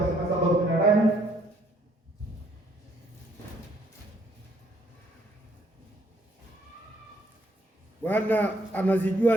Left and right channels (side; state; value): both; normal; correlation 0.67